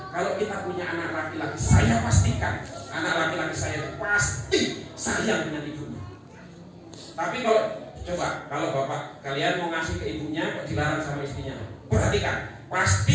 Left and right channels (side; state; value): both; identical; correlation 1.00